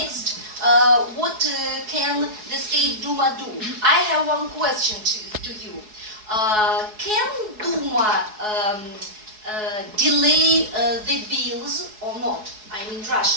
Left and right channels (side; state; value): left; late; 4.7 ms